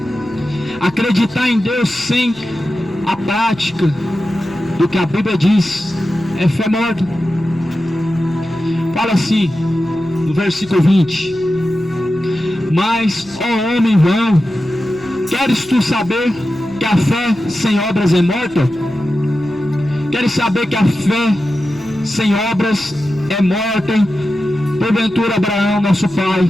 Acreditar em Deus sem a prática do que a Bíblia diz é fé morta. Fala assim, no versículo 20: mas, ó homem vão, queres tu saber que a fé sem obras é morta? Queres saber que a fé sem obras é morta? Porventura Abraão, nosso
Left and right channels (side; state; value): left; noise; rumble, 26 dB below the sound